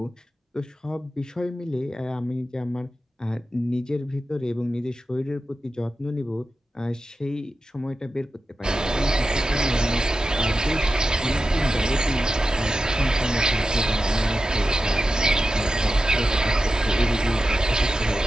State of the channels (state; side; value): normal; both; correlation 0.91